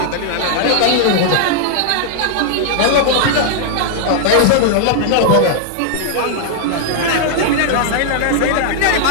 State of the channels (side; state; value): both; different; correlation -0.01